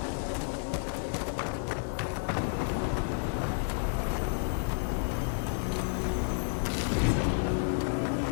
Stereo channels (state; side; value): silent; right; digital silence